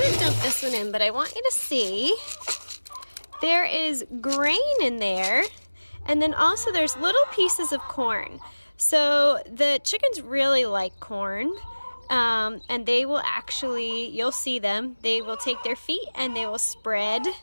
to dump this one in, but I want you to see there is grain in there, and then also there's little pieces of corn. So the chickens really like corn, and they will actually, you'll see them, they will take their feet and they will spread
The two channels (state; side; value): inverted; both; correlation -1.00